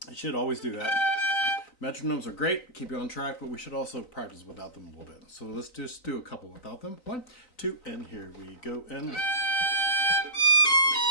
I should always do that. Metronomes are great, keep you on track, but we should also practice without them a little bit. So let's just do a couple without them. 1, 2, and here we go. And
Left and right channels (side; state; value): right; late; 3.9 ms